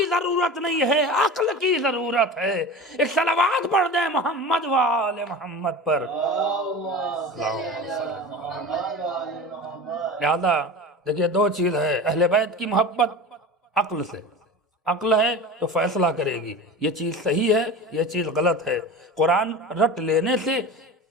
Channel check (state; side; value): normal; both; correlation 0.32